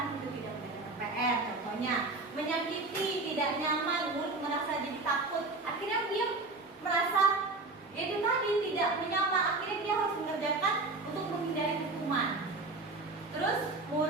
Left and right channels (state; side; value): quieter; left; 3.4 dB